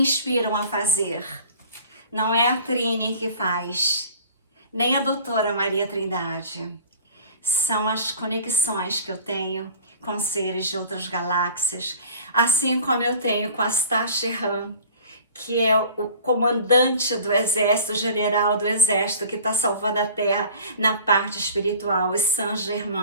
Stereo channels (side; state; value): both; inverted; correlation -0.44